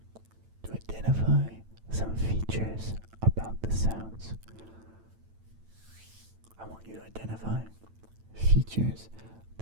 to identify some features about the sounds. I want you to identify features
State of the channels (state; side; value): late; left; 9.0 ms